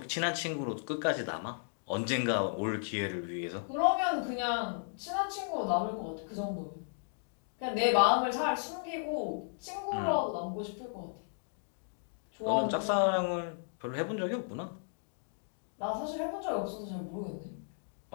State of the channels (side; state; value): right; silent; digital silence